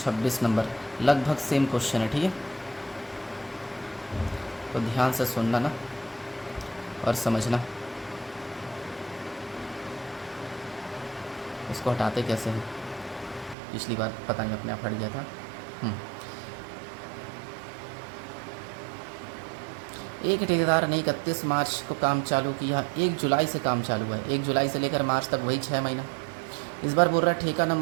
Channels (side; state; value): left; drops out; at 13.6 s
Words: नंबर, लगभग सेम क्वेश्चन है, ठीक है। तो ध्यान से सुनना ना और समझना। इसको हटाते कैसे हैं, पिछली बार पता नहीं अपने आप हट गया था। एक ठेकेदार ने 31 मार्च को काम चालू किया, 1 जुलाई से काम चालू है, 1 जुलाई से लेकर मार्च तक वही 6 महीना। इस बार बोल रहा है ठेका